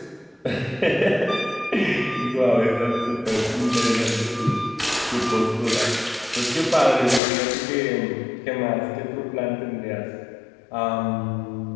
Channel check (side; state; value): right; drops out; at 7.2 s